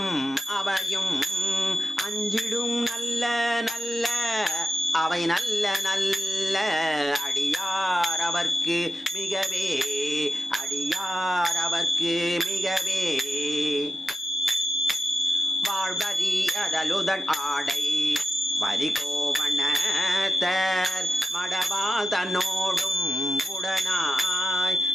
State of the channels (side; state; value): both; normal; correlation 0.90